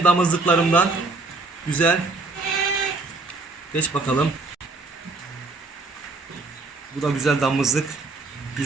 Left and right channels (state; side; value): quieter; left; 3.6 dB